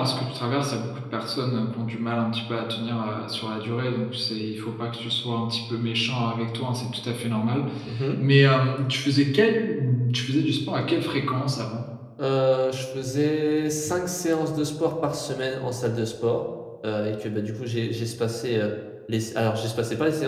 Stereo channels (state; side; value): identical; both; correlation 1.00